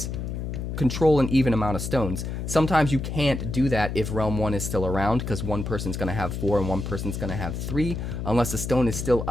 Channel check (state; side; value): noise; left; hum, 4 dB below the sound